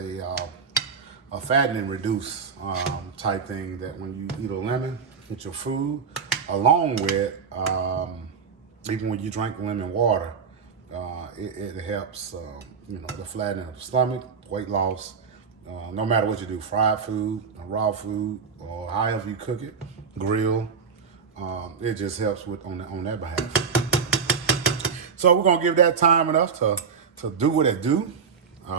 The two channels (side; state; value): left; quieter; 6.0 dB